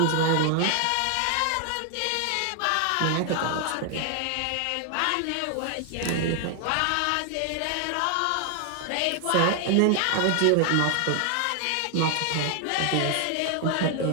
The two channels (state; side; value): different; both; correlation 0.00